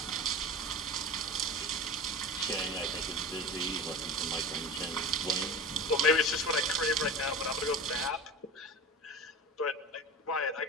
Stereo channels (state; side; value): normal; both; correlation 0.32